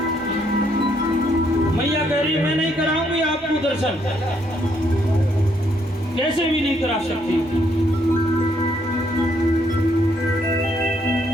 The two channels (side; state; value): both; normal; correlation 0.72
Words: मैया कह रही मैं नहीं कराऊंगी आपको दर्शन, कैसे भी नहीं करा सकती।